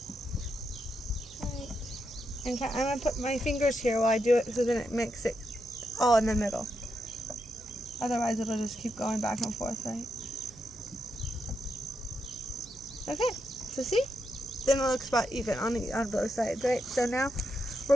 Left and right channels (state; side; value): noise; right; hum, 21 dB below the sound